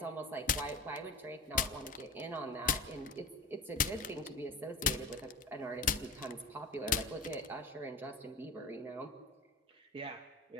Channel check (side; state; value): right; quieter; 3.2 dB